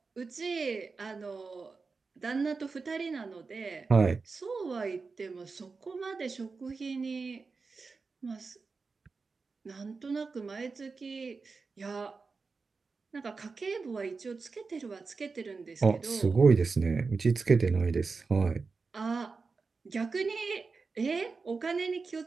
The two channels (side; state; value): left; quieter; 4.4 dB